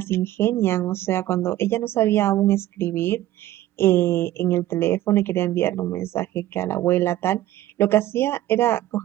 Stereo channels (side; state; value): left; quieter; 14.4 dB